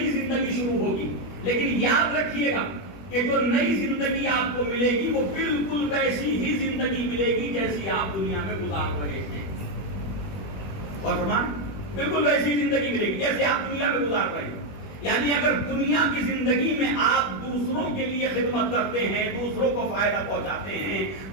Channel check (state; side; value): late; right; 21 ms